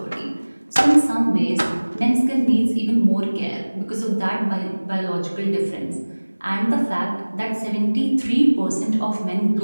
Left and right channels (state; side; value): inverted; both; correlation -1.00